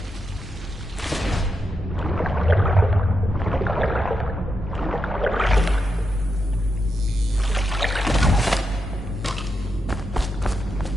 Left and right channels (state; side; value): normal; both; correlation 0.85